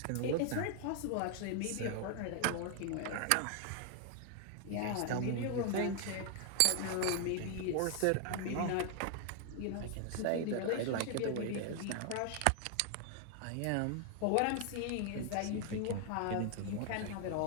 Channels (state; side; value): different; both; correlation 0.00